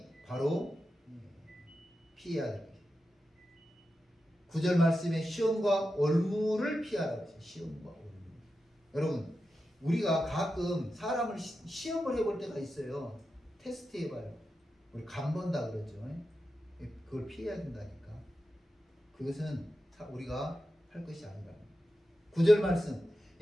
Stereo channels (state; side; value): normal; both; correlation 0.90